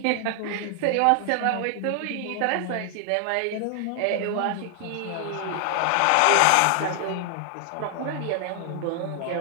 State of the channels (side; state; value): both; different; correlation 0.00